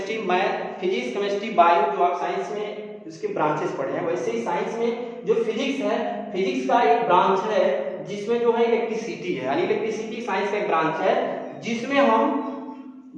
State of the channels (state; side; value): identical; both; correlation 1.00